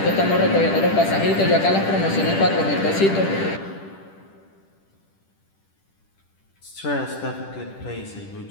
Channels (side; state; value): right; late; 10 ms